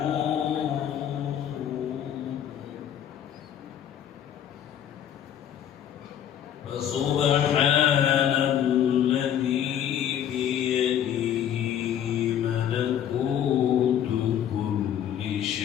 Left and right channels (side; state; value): right; quieter; 9.9 dB